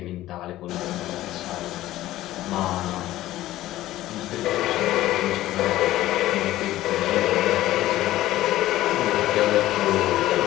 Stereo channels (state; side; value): quieter; right; 15.1 dB